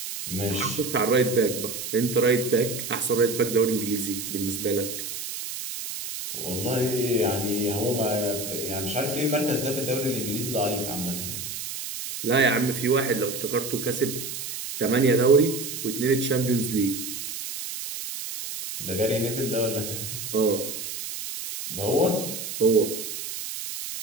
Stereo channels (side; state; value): right; noise; hiss, 6 dB below the sound